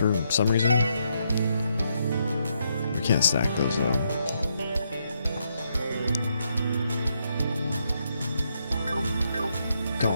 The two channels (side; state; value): both; inverted; correlation -0.78